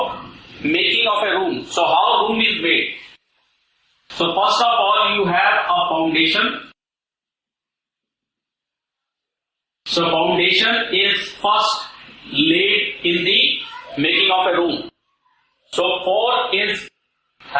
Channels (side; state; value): both; identical; correlation 1.00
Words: making of a room. So how room is made? So first of all, you have a foundation. So foundation is first laid in the making of a room. So pour is